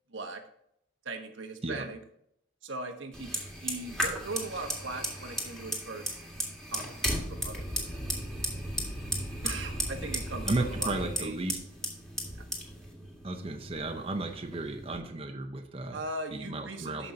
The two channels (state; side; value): normal; both; correlation 0.43